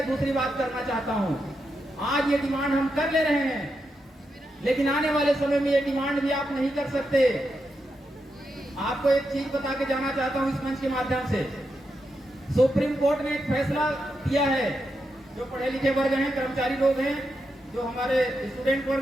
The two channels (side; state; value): both; normal; correlation 0.85